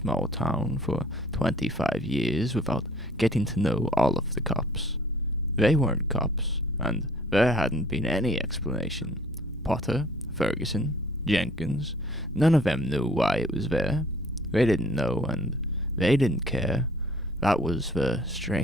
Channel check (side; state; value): both; normal; correlation 0.54